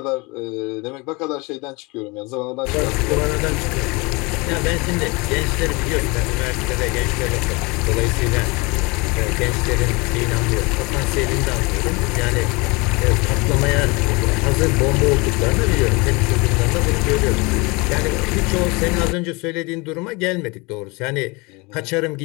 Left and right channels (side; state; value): right; quieter; 26.7 dB